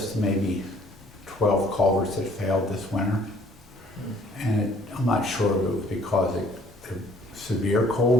maybe 12 culverts that failed this winter. And I'm not sure if it was because severe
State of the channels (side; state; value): both; normal; correlation 0.58